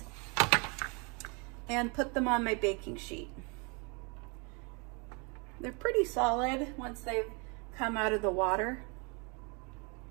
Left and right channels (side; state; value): left; quieter; 32.5 dB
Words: and put them on my baking sheet. They're pretty solid once they've come out of the water.